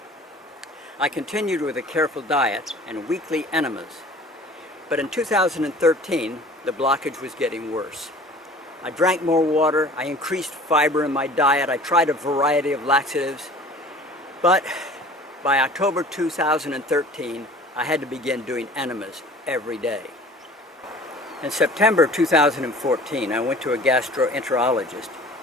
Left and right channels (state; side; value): normal; both; correlation 0.46